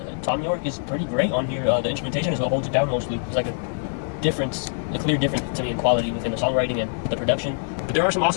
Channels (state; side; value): silent; right; 63 dB below the other